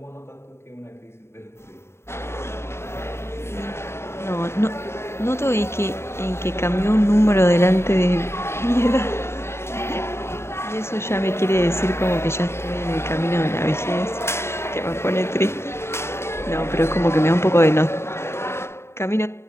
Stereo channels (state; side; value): late; right; 0.12 ms